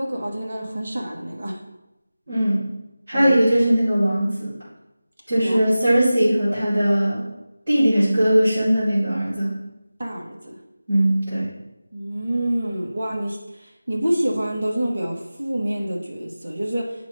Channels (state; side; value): inverted; both; correlation -0.96